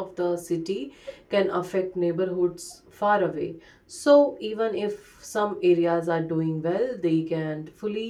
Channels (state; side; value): identical; both; correlation 1.00